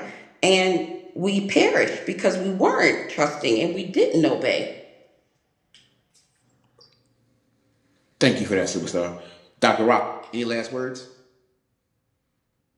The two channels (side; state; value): both; identical; correlation 1.00